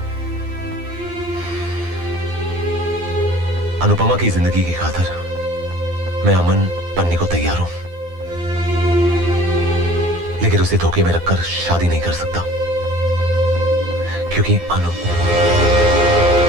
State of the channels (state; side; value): late; left; 12 ms